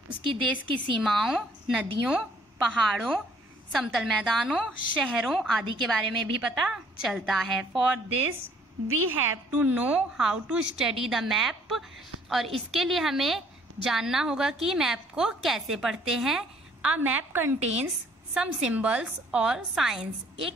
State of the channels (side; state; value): both; normal; correlation 0.61